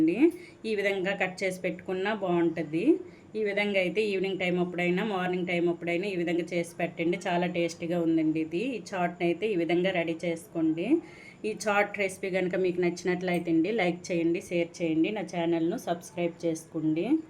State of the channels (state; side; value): identical; both; correlation 1.00